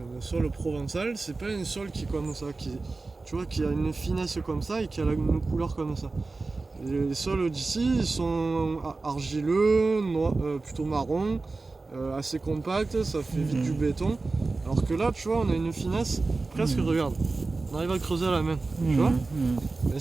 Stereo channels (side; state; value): left; quieter; 3.6 dB